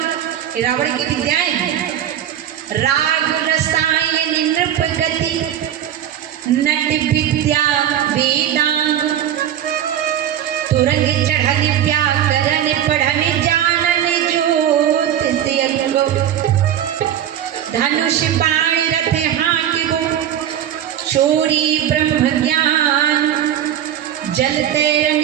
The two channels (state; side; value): quieter; left; 10.6 dB